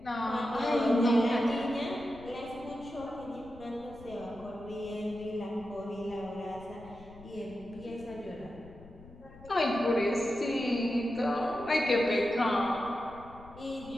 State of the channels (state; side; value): noise; left; rumble, 20 dB below the sound